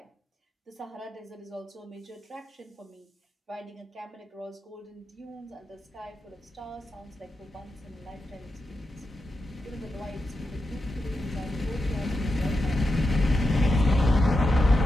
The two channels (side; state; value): both; normal; correlation 0.88